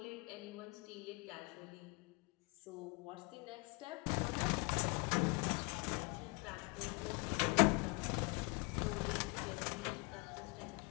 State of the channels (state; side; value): quieter; right; 29.6 dB